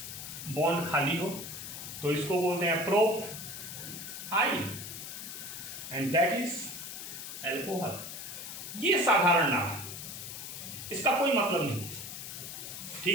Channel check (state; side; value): noise; left; hiss, 9 dB below the sound